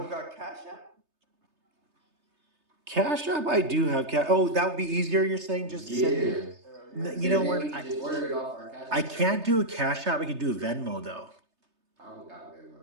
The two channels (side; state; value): left; late; 3.3 ms